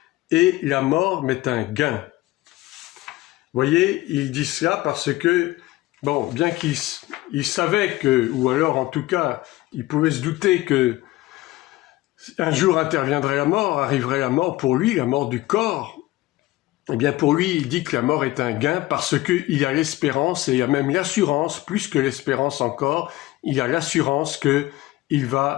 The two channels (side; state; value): right; quieter; 17.9 dB